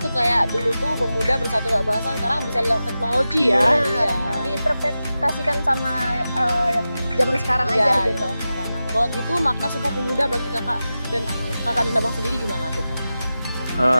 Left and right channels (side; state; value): both; inverted; correlation -0.93